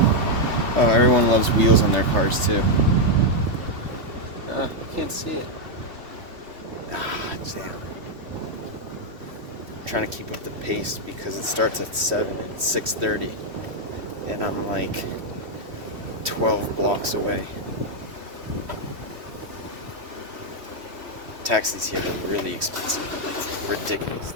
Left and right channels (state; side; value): late; left; 3.1 ms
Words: Oh, everyone loves wheels on their cars too. I can't see it. Damn. I'm trying to keep up the pace because it starts at 7 and it's 6:30. And I'm like 12 blocks away. Taxis here are really expensive. Like,